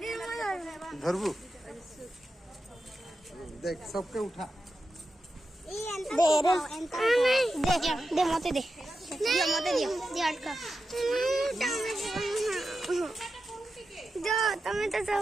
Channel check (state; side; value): normal; both; correlation 0.90